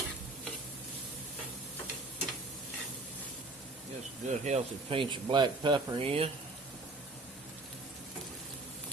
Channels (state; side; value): quieter; left; 3.0 dB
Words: Just a good healthy pinch of black pepper in.